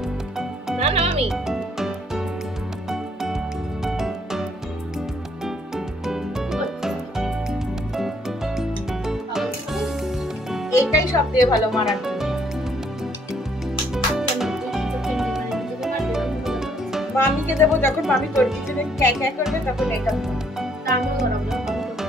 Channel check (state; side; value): normal; both; correlation 0.67